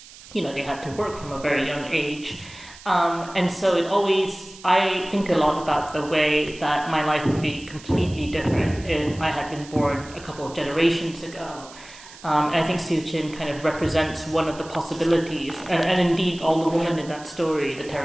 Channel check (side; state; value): right; noise; hiss, 19 dB below the sound